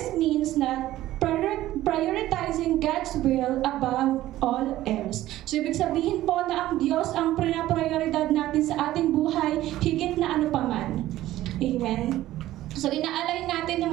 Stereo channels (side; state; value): left; quieter; 14.8 dB